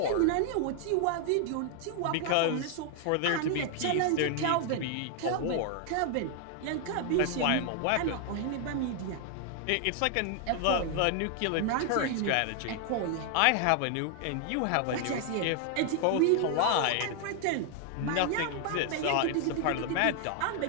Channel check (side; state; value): both; different; correlation 0.00